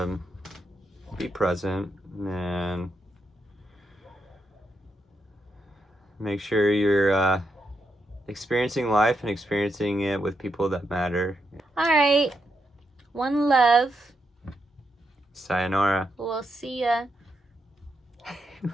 be present and make sure you're experiencing life and experiencing it with people that matter. All right. One love. Sayonara. We'll see ya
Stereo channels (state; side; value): normal; both; correlation 0.83